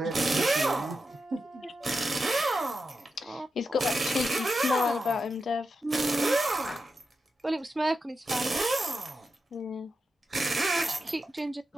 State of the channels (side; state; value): both; normal; correlation 0.89